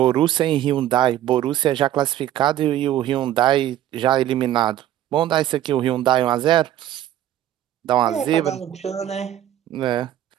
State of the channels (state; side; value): quieter; left; 12.4 dB